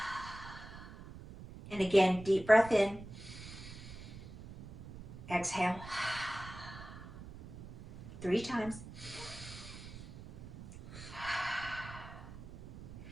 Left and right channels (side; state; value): right; noise; rumble, 14 dB below the sound